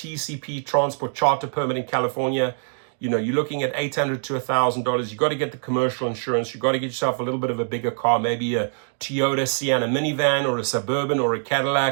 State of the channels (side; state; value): left; silent; 61 dB below the other